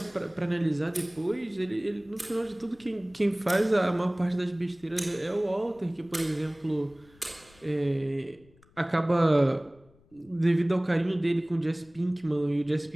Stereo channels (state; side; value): noise; left; rumble, 29 dB below the sound